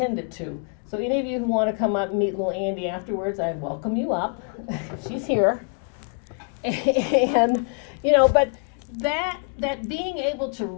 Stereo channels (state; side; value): quieter; right; 39.8 dB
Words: to. So any of you who want to come up and meet little Andy afterwards, I welcome you up. She's here. And, but that being able to